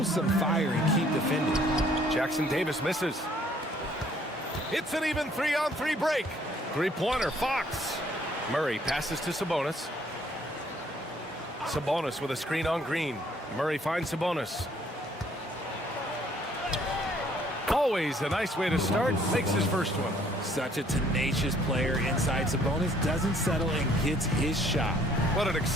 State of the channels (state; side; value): normal; both; correlation 0.62